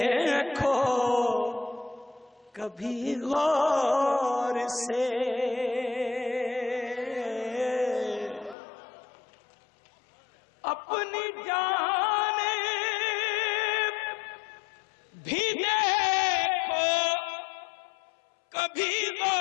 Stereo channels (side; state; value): right; drops out; at 8.6 s